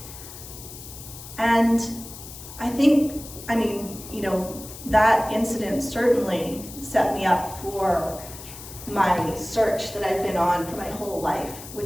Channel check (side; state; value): left; noise; hiss, 14 dB below the sound